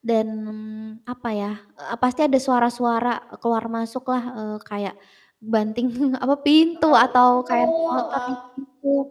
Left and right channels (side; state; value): both; identical; correlation 1.00